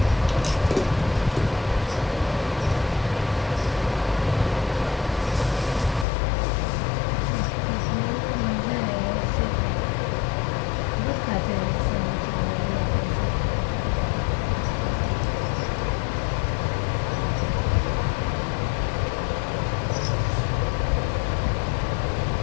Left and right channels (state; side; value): drops out; right; at 6.1 s